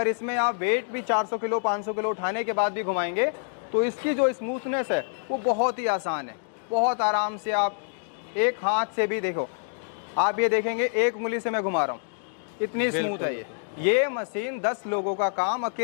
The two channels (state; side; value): silent; right; digital silence